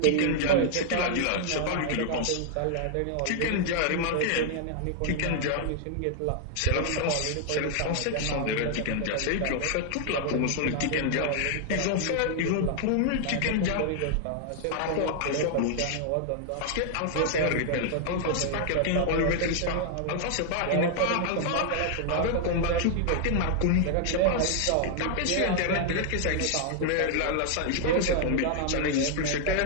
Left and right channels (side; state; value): both; different; correlation 0.00